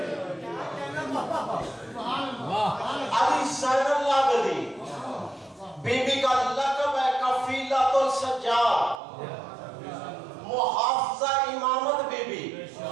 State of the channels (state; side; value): drops out; left; at 9.0 s